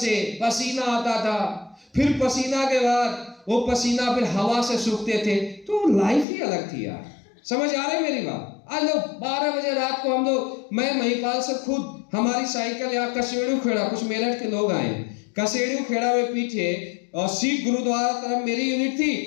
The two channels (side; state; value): right; drops out; at 6.2 s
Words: पसीना आता था, फिर पसीना के बाद वो पसीना फिर हवा से सूखते थे। तो लाइफ ही अलग थी यार। समझ आ रही मेरी बात? आज लोग 12 बजे रात को हम लोग, मैं महिपाल से खुद, हमारी साइकिल यहाँ कसेड़ू खेड़ा, कुछ मेरठ के लोग आए, कसेड़ू खेड़ा में पीछे और सिख गुरुद्वारा तरफ मेरी यूनिट